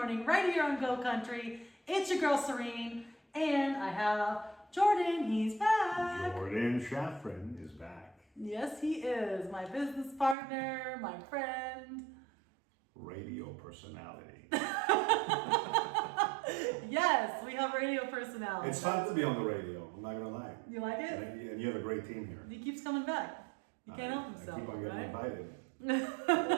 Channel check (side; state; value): left; drops out; at 10.4 s